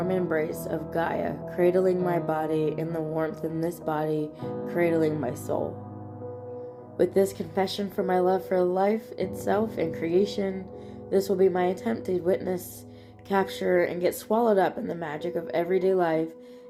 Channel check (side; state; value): both; identical; correlation 1.00